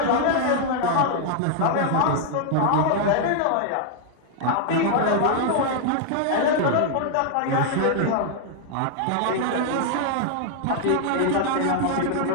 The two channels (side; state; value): both; different; correlation 0.00